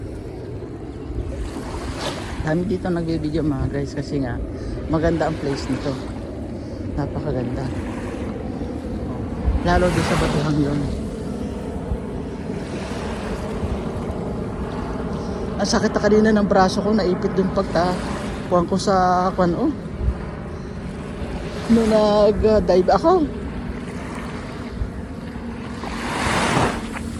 Dami dito nagbibideo, mga guys, kasi nga maganda ang place nito. Napakaganda. Lalo din sa Batuhang yun. Ang sakit na kanina ng braso ko, naipit dun pagtakuhan ko sa kwan, oh. Nung nag-dive ako.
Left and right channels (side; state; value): both; identical; correlation 1.00